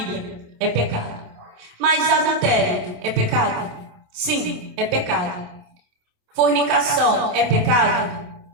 É pecado. Mas adultério é pecado? Sim, é pecado. Fornicação é pecado?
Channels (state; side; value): late; left; 27 ms